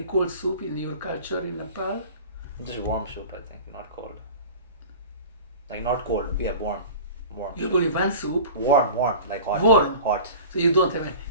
cold soup in your culture in Nepal? Just warm soup, I think, not cold. Like not cold, yeah, warm. You have only one soup? Warm, like hot. Warm? Hot. So you don't have any.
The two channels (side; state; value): both; inverted; correlation -0.39